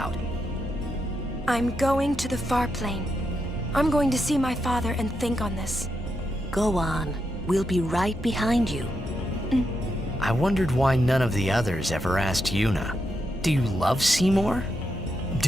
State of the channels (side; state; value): both; normal; correlation 0.83